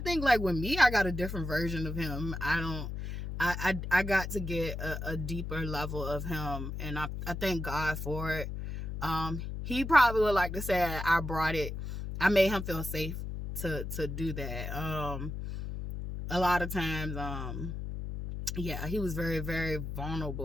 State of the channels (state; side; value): noise; left; hum, 6 dB below the sound